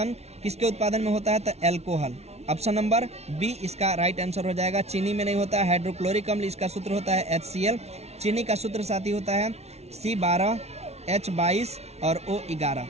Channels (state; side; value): late; left; 0.31 ms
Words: किसके उत्पादन में होता है? तो एल्कोहल। ऑप्शन नंबर बी इसका राइट आंसर हो जाएगा। चीनी में नहीं होता है। हाइड्रोक्लोरिक अम्ल, इसका सूत्र होता है HCl। चीनी का सूत्र साथी होता है C12H22 और O11।